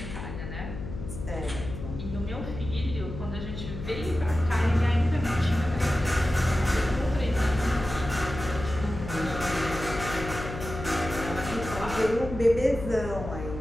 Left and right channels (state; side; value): noise; left; hum, 8 dB below the sound